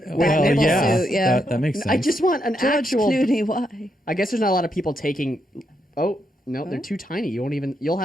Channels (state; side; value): normal; both; correlation 0.80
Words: Well, nipple yeah, suit, yeah. that makes sense. I just want an George actual. Clooney, why? I guess there's not a lot of people taking. Oh no, they're too tiny. You won't even. You'll